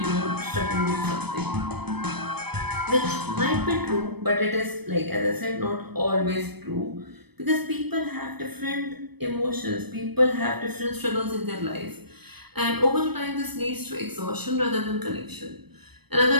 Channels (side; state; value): left; late; 0.98 ms